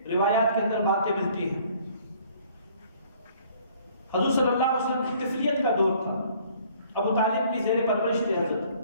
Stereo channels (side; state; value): both; inverted; correlation -0.58